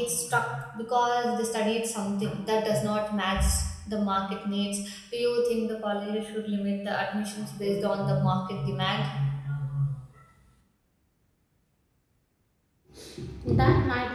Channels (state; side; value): identical; both; correlation 1.00